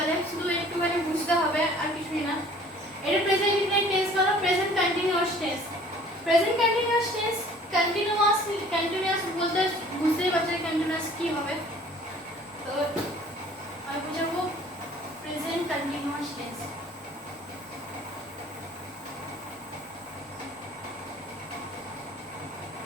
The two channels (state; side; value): normal; both; correlation 0.51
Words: শুধু একটুখানি বুঝতে হবে আর কিছুই না। এটা প্রেজেন্ট ইনডিফিনিট টেন্স বলো, present continuous tense. Present continuous tense continuous বলতে বুঝতেই পারছো কন্টিনিউয়াস কি হবে। তো আমি বুঝাবো present continuous tense.